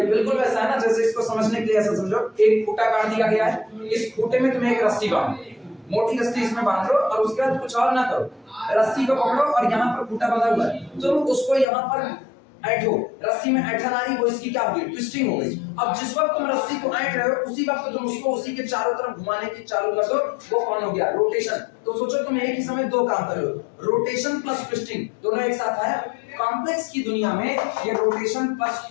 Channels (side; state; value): right; drops out; at 11.7 s